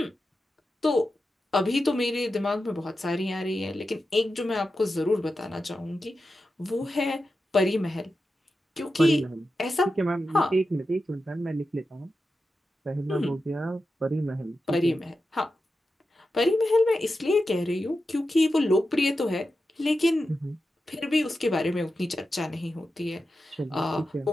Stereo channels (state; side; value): normal; both; correlation 0.91